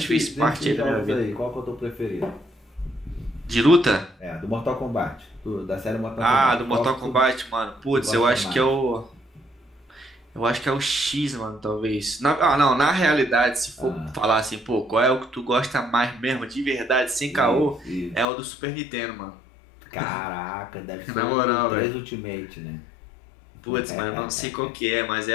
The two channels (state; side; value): drops out; right; at 18.2 s